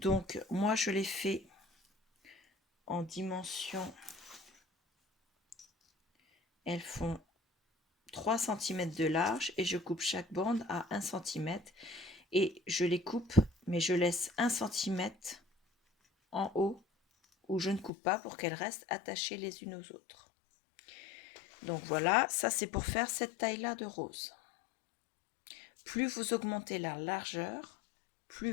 moi je l'ai fait en dimension, elles font 3 cm de large et je coupe chaque bande à 1 cm et je les coupe, mais je laisse 1 cm en haut où je ne coupe pas pour qu'elles restent attachées les unes aux autres. Donc voilà, ça c'est pour faire cette taille là de rose. Plus vous augmentez la largeur, plus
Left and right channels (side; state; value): right; drops out; at 17.9 s